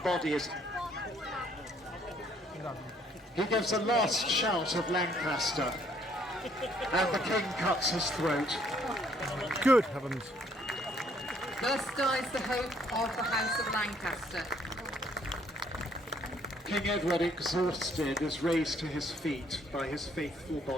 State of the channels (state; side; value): normal; both; correlation 0.65